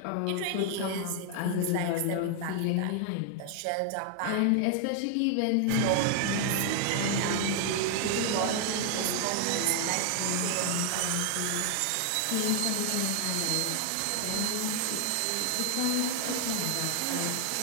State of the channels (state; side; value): different; both; correlation 0.00